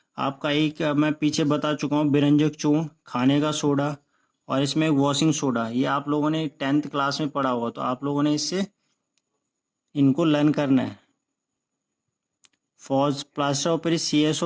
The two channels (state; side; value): identical; both; correlation 1.00